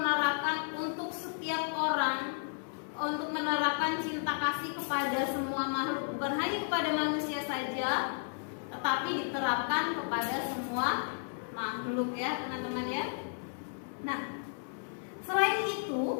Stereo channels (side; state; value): right; silent; 56 dB below the other